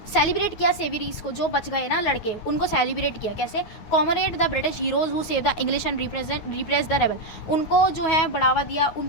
सेलिब्रेट किया सेविरीज को, जो बच गए ना लड़के, उनको सेलिब्रेट किया कैसे, comrade the British heroes who save the English and repress the rebel. उनको जो है बढ़ावा दिया,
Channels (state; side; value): late; right; 9.4 ms